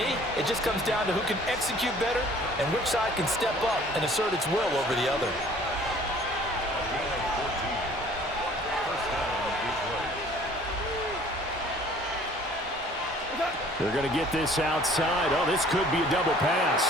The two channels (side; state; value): both; normal; correlation 0.53